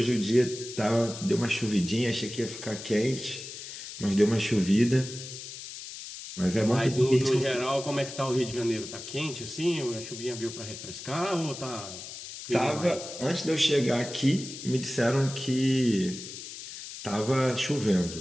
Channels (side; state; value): left; noise; hiss, 11 dB below the sound